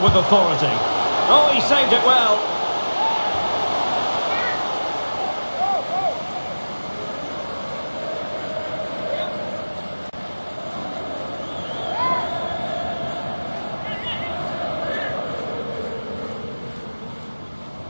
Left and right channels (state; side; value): inverted; both; correlation -1.00